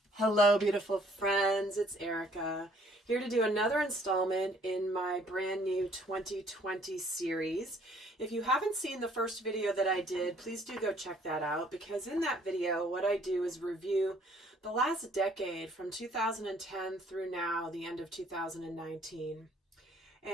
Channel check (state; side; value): normal; both; correlation 0.61